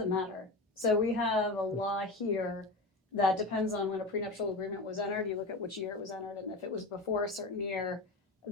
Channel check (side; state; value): right; quieter; 3.0 dB